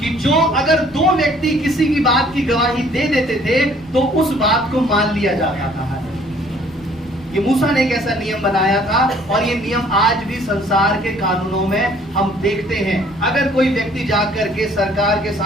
कि जो अगर दो व्यक्ति किसी की बात की गवाही दे देते थे तो उस बात को मान लिया जाता था। ये मूसा ने एक ऐसा नियम बनाया था और ये नियम आज भी संसार के कानूनों में हम देखते हैं। अगर कोई व्यक्ति जाकर के सरकार के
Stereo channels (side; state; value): both; normal; correlation 0.58